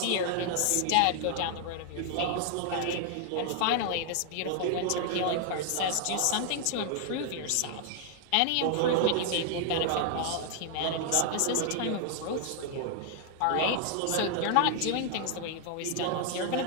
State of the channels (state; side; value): different; both; correlation 0.00